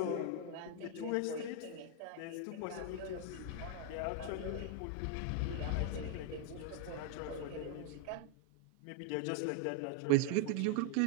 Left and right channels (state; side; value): different; both; correlation 0.00